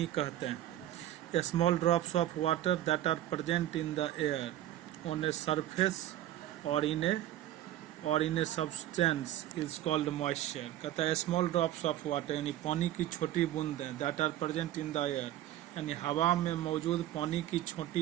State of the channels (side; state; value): left; quieter; 13.2 dB